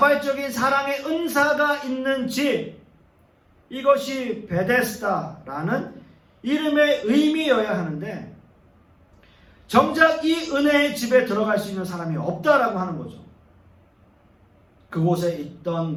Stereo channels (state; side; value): identical; both; correlation 1.00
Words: 사랑의 은사가 있는 집, 이것이 베데스다라는 이름의 의미여야 하는데 정작 이 은혜의 집에 들어갈 수 있는 사람이 없다라고 하는 거죠. 그곳에 있던